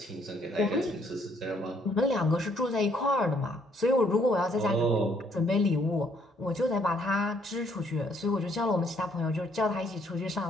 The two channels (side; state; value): both; normal; correlation 0.67